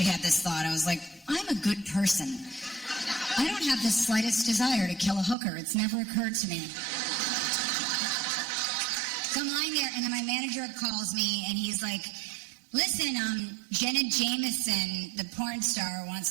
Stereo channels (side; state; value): left; drops out; at 5.4 s